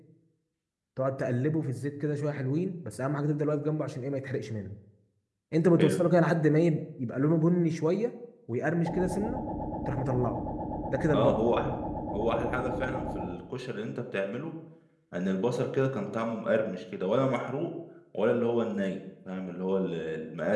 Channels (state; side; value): identical; both; correlation 1.00